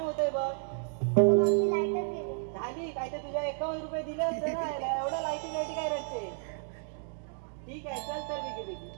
होतंय बघ. मावशी लाईटच गेली. झाली काय तर तुझ्या 51 रुपये दिले असते ना याला. एवढं लाईटी काय रडते? ठीक आहे चल तर बेगी बेगी.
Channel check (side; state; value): left; silent; 56 dB below the other